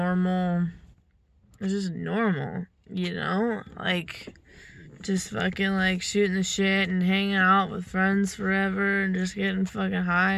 you know, like, just fucking, like, shooting the shit and hanging out with friends forever and just getting fucking high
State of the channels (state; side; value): identical; both; correlation 1.00